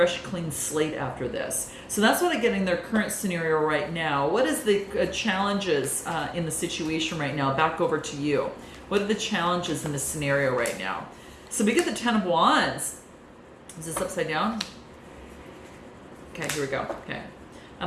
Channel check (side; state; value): both; identical; correlation 1.00